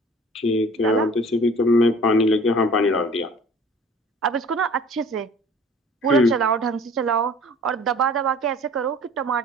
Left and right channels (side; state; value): both; normal; correlation 0.48